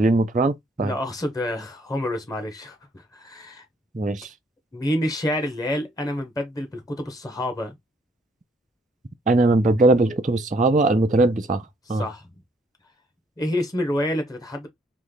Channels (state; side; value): normal; both; correlation 0.66